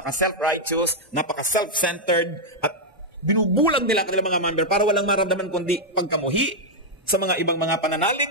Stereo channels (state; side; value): normal; both; correlation -0.03